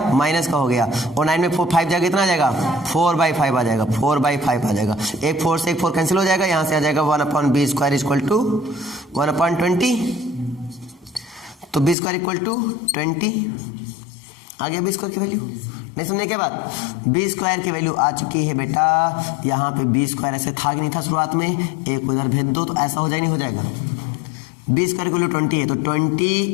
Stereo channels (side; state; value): right; drops out; at 12.0 s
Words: माइनस का हो गया, और 9 में 5 जाएगा, कितना आ जाएगा? 4/5 आ जाएगा, 4/5 आ जाएगा। एक 4 से एक 4 कैंसिल हो जाएगा, यहाँ से आ जाएगा 1/b स्क्वायर इक्वल टू 1/20। तो b स्क्वायर इक्वल टू 20 आ गया। b स्क्वायर की वैल्यू नहीं समझे क्या बात? b स्क्वायर की वैल्यू आ चुकी है बेटा। यहाँ पे b स्क्वायर ऐसे था कि नहीं था शुरुआत में? एक को इधर भेज दो तो ऐसा हो जाए, नहीं हो जाएगा? b स्क्वायर की वैल्यू 20 है, तो